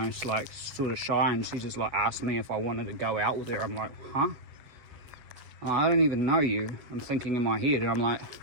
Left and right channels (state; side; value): late; left; 7.3 ms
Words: like sort of shy, and she just like asked me if I wanted to go out with her. I'm like, huh? I don't even know you. I'm thinking in my head, and I'm like,